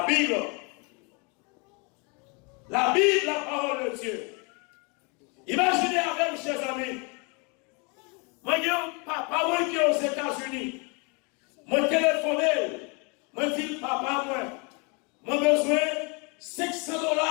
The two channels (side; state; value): right; quieter; 32.4 dB